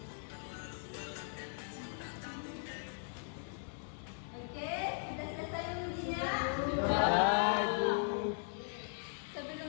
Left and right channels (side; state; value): right; silent; digital silence